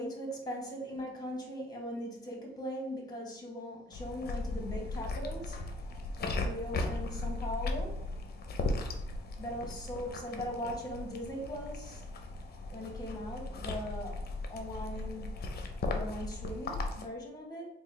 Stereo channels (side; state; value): both; normal; correlation 0.58